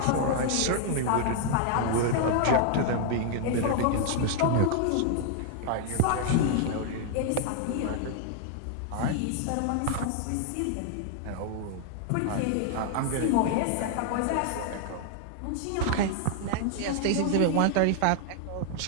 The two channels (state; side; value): different; both; correlation -0.01